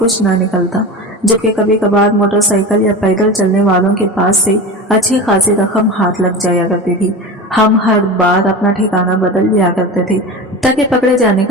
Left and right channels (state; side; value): normal; both; correlation 0.28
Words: ना निकलता, जबकि कभी कभार मोटरसाइकिल या पैदल चलने वालों के पास से अच्छी खासी रकम हाथ लग जाया करती थी। हम हर बार अपना ठिकाना बदल लिया करते थे ताकि पकड़े जाने